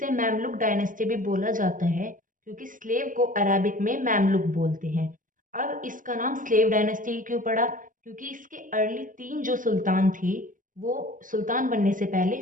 मैमलुक डायनेस्टी भी बोला जाता है क्योंकि स्लेव को अरबिक में मैमलुक बोलते हैं। अब इसका नाम स्लेव डायनेस्टी क्यों पड़ा? क्योंकि इसके अर्ली 3 जो सुल्तान थे वो सुल्तान बनने से पहले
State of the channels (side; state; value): left; late; 0.38 ms